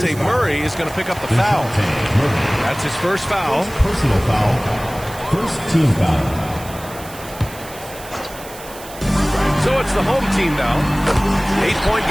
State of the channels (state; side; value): noise; right; hiss, 17 dB below the sound